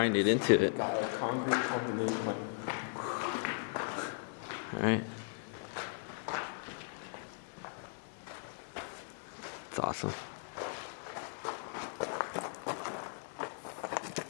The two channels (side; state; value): right; silent; digital silence